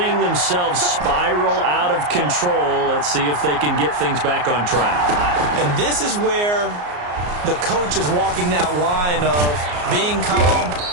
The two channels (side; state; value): left; late; 34 ms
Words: themselves spiral out of control. Let's see if they can get things back on track. And this is where the coach is walking that line of being calm